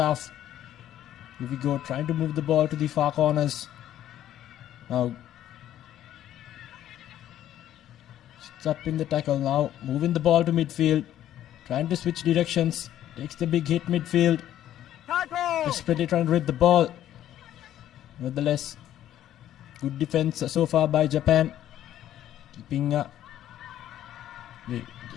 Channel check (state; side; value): quieter; right; 12.0 dB